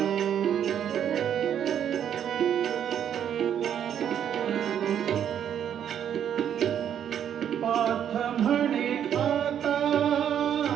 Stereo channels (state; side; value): quieter; left; 9.3 dB